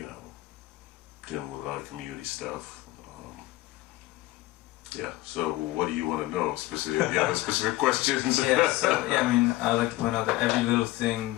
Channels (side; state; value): right; quieter; 18.1 dB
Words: dealing with a lot of community stuff. So what do you want to know specifically? Yeah, specific questions. I like to point out that every little thing